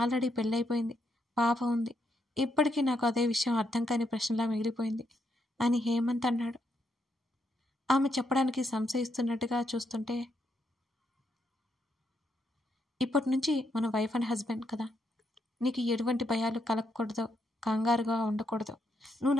ఆల్రెడీ పెళ్ళైపోయింది, పాప ఉంది. ఇప్పటికీ నాకు అదే విషయం అర్థం కాని ప్రశ్నలా మిగిలిపోయింది అని హేమంత్ అన్నాడు. ఆమె చెప్పడానికి సంశయిస్తున్నట్టుగా చూస్తుంటే, ఇప్పటి నుంచి మన వైఫ్ అండ్ హస్బెండ్ కదా, నీకు ఎటువంటి భయాలు కలగకూడదు, కంగారుగా ఉండకూడదు. నువ్వు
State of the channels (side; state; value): both; normal; correlation 0.78